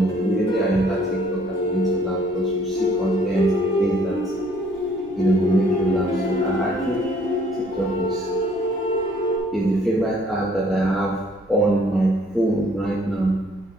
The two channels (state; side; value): noise; right; rumble, 26 dB below the sound